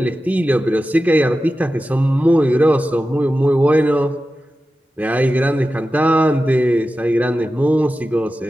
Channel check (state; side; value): normal; both; correlation 0.93